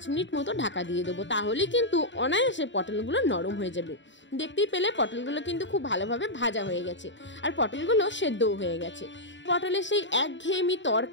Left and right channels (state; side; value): late; right; 0.54 ms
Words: মিনিট মতো ঢাকা দিয়ে দেবো, তাহলে কিন্তু অনায়াসে পটলগুলো নরম হয়ে যাবে। দেখতেই পেলে পটলগুলো কিন্তু খুব ভালোভাবে ভাজা হয়ে গেছে আর পটলগুলো সেদ্ধও হয়ে গেছে। পটলের সেই একঘেয়েমি